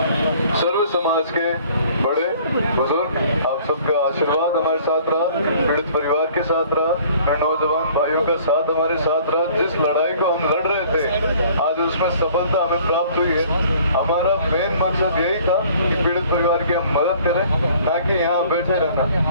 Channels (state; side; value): inverted; both; correlation -0.53